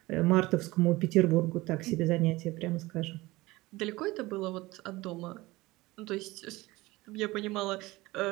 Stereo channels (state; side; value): quieter; left; 20.2 dB